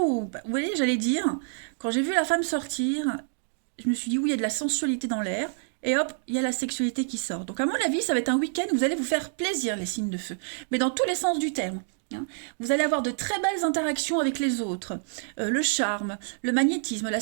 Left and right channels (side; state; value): left; silent; digital silence